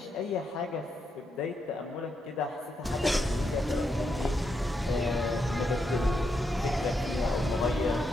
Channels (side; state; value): both; normal; correlation 0.81